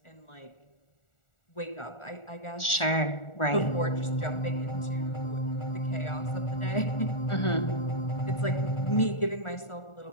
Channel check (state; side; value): late; right; 1.4 ms